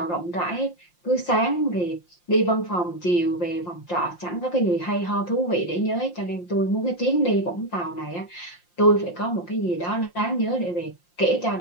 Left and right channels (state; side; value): late; right; 5.7 ms